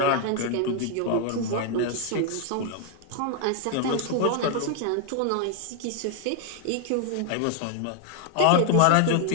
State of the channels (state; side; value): different; both; correlation 0.00